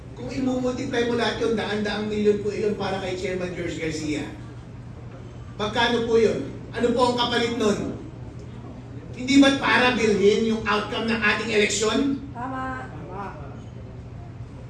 Kung imumultiply mo lahat yun, daan-daang milyon po yun para kay Chairman George Garcia. Magkano po yun? Ano po ang kapalit nun? Hindi ba't para bilhin yung outcome ng ating eleksyon? Tama.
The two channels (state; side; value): identical; both; correlation 1.00